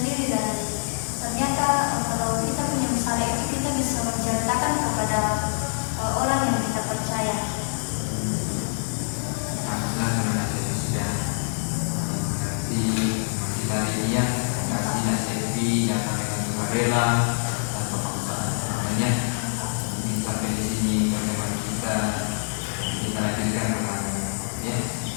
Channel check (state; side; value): silent; right; digital silence